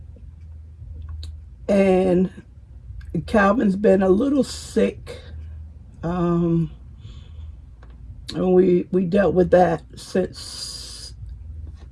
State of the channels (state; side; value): identical; both; correlation 1.00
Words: and Calvin's been a little sick. And we dealt with that since